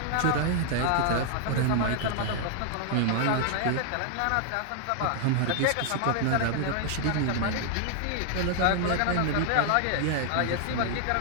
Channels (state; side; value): different; both; correlation 0.00